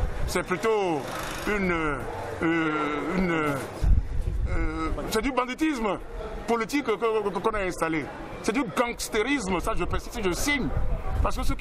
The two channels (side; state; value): both; identical; correlation 1.00